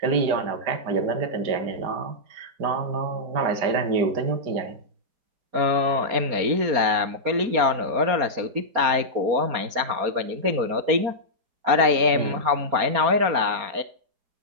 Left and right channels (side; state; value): left; late; 4.3 ms